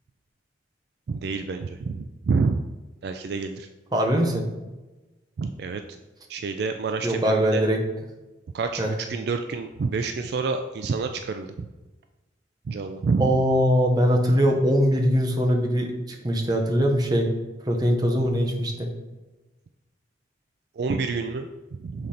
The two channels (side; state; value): both; normal; correlation 0.72